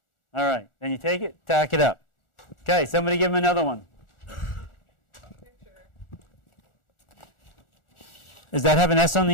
All right. Then you take it, tack it up. Okay, somebody give him another one. Picture. Does that have an S on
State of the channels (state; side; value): late; right; 1.4 ms